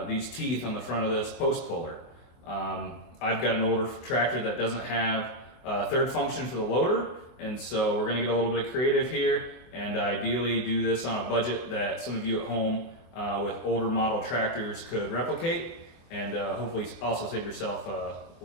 these teeth on the front of this post puller. I've got an older tractor that doesn't have a third function for the loader, and so we're going to get a little bit of creative here and ideally do this on a budget that some of you at home with older model tractors could replicate, and hopefully also save yourself a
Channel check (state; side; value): late; right; 24 ms